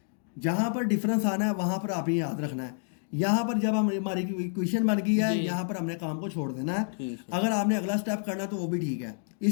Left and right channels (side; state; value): right; silent; digital silence